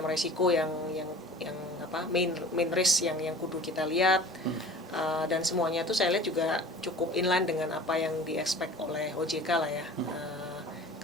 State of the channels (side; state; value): both; normal; correlation 0.42